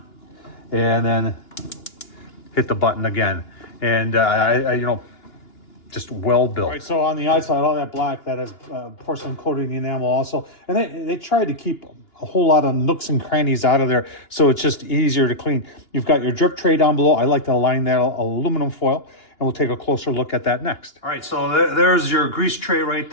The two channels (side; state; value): right; late; 2.9 ms